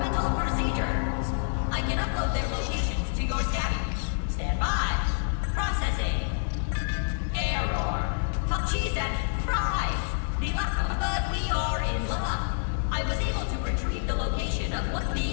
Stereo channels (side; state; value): right; silent; digital silence